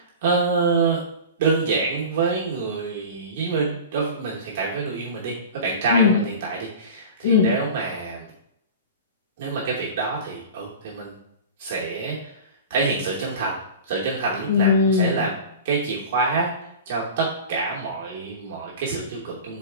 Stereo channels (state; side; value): inverted; both; correlation -0.34